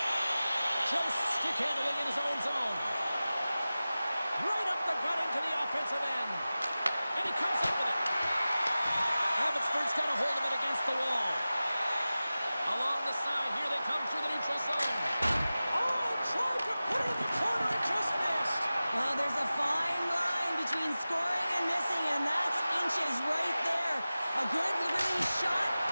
Just stick handling in his own zone. Right up the gut into the offensive end. And he comes up with it. Abbotsford's got a hold of it against the wall. Along the side, here they come through the neutral zone. Oh, tried to put it in the corner and just missed. Well, there's a fine line between scoring and missing, and that's inches right there. A good release shot,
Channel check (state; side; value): inverted; both; correlation -0.96